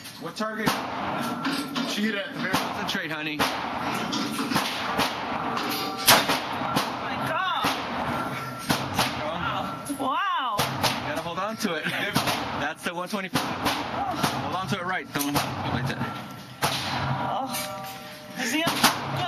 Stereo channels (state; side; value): identical; both; correlation 1.00